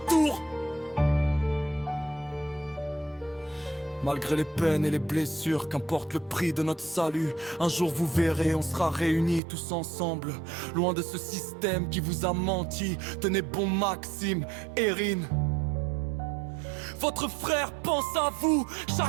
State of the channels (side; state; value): left; drops out; at 9.4 s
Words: Malgré les peines et les blessures, qu'importe le prix de notre salut, un jour vous verrez, on sera réunis tous ensemble, loin de ce système qui vous a menti. Tenez bon Maxime, Erin. Votre frère pense à vous